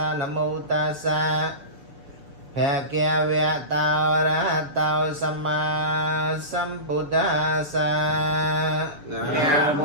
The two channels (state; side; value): late; left; 6.6 ms